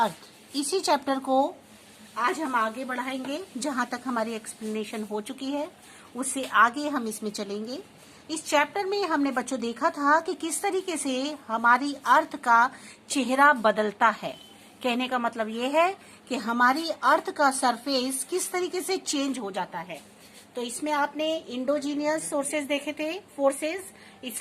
इसी chapter को आज हम आगे बढ़ाएंगे। जहां तक हमारी एक्सप्लेनेशन हो चुकी है उससे आगे हम इसमें चलेंगे। इस चैप्टर में हमने बच्चों देखा था कि किस तरीके से हमारी अर्थ का चेहरा बदलता है। कहने का मतलब ये है कि हमारी अर्थ का सरफेस किस तरीके से चेंज हो जाता है। तो इसमें आपने इंडोजीनियस सोर्सेज देखे थे, फोर्सेस।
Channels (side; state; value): both; identical; correlation 1.00